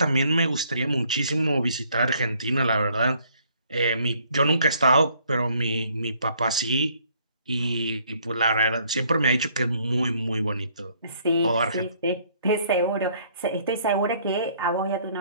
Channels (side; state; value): both; inverted; correlation -0.64